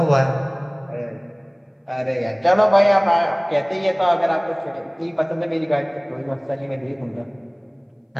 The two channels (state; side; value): identical; both; correlation 1.00